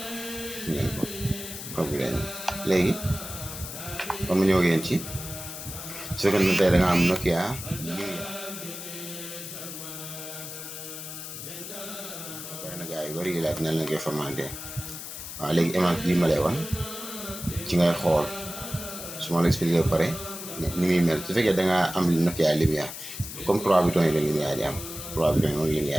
ngeen ko code bi dañu léegi comme ñëw ngeen ci su fekkee ne tey da nga am Nokia bari na gars yu bari yi laaj nan la koy formaté. waaw léegi image bii ma lay wan ci ngay xool su ma la expliqué ba pare ni muy mel su fekkee da ngaa am Nokia lumière comme 3 boutons yi la lumière di am 3 boutons yi moom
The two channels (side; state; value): left; noise; hiss, 9 dB below the sound